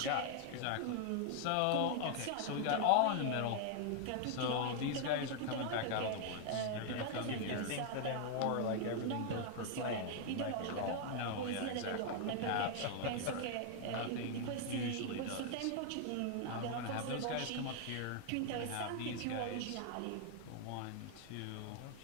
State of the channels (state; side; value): different; both; correlation 0.00